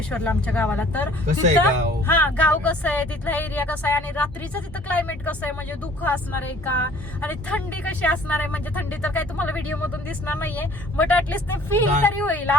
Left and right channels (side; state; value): both; normal; correlation 0.53